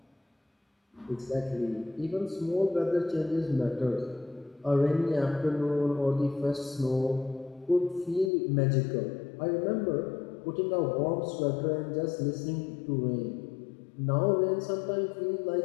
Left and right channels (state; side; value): drops out; right; at 8.3 s